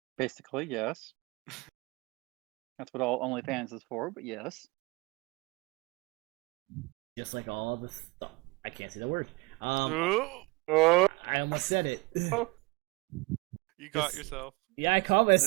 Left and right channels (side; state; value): left; quieter; 25.2 dB